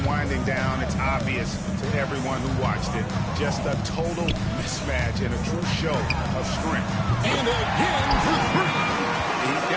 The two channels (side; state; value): both; identical; correlation 1.00